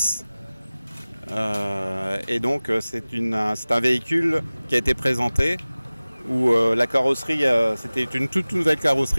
Et donc c'est un véhicule qui a été présenté où la carrosserie, c'était une toute nouvelle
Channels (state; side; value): inverted; both; correlation -0.98